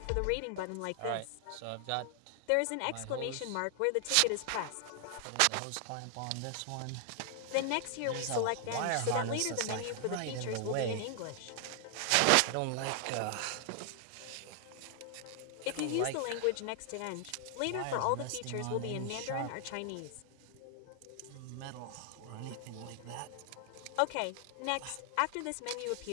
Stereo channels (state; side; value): different; both; correlation 0.00